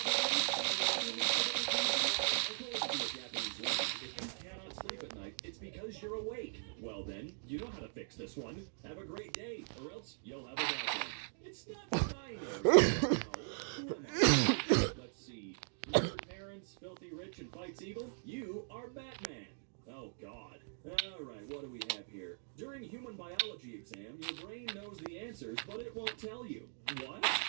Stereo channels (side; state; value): left; silent; digital silence